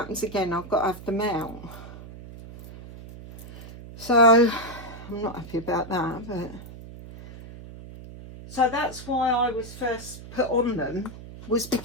again, I've got to have them out. So I'm not happy about that, but... So that's why I was first put on them, was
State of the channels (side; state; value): right; noise; hum, 15 dB below the sound